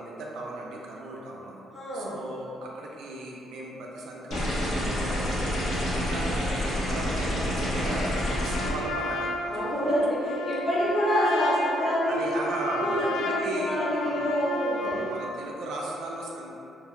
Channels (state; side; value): normal; both; correlation 0.71